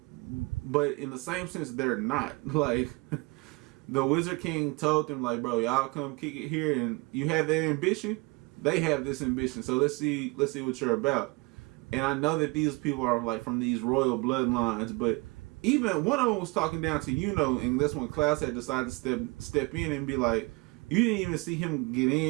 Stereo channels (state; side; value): quieter; left; 26.3 dB